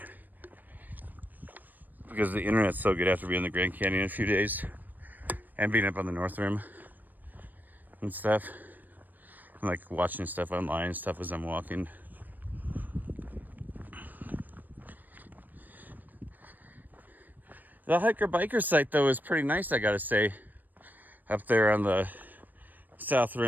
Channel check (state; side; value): late; left; 0.087 ms